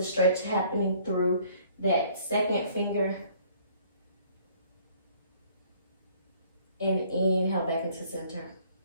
stretch happening through that second finger. And inhale back into center.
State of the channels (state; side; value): inverted; both; correlation -0.58